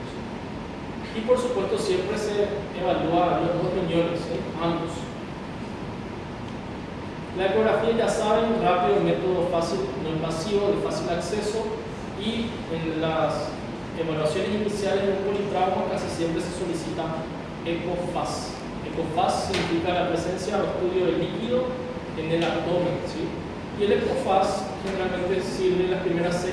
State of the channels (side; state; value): both; identical; correlation 1.00